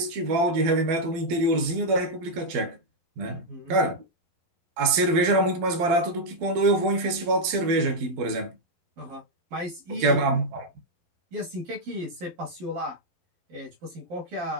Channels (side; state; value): left; late; 12 ms